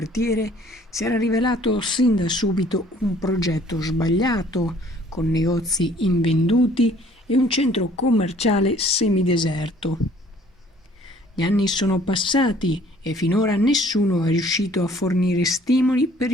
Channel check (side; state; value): both; normal; correlation 0.57